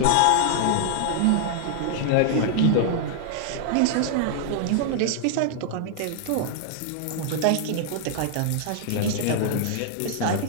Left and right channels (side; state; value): both; different; correlation 0.00